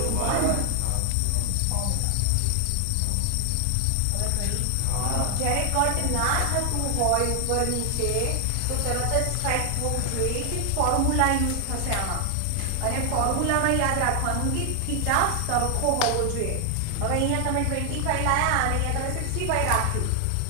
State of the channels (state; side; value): different; both; correlation 0.00